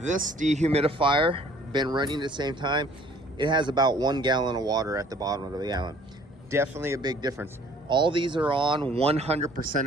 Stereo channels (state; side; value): normal; both; correlation 0.55